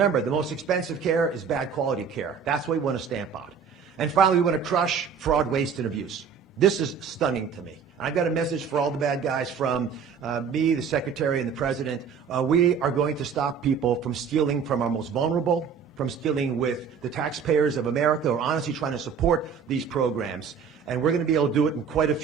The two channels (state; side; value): quieter; left; 6.5 dB